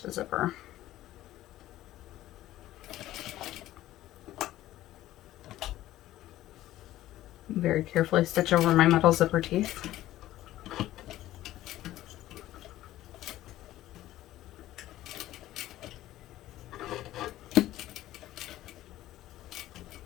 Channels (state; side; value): quieter; right; 14.7 dB